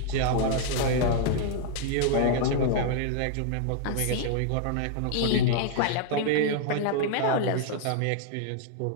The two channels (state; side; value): different; both; correlation -0.01